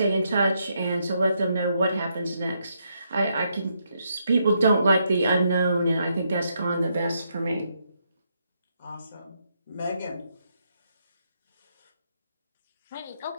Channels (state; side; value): inverted; both; correlation -0.77